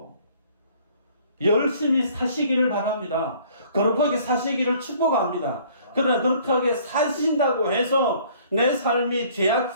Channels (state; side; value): inverted; both; correlation -0.56